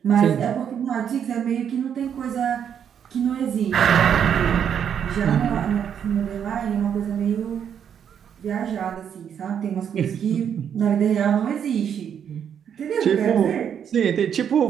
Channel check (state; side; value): quieter; left; 8.4 dB